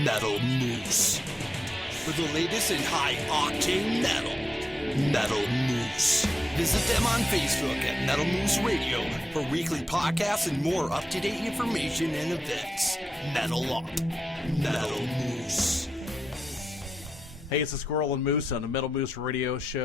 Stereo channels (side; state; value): both; normal; correlation 0.88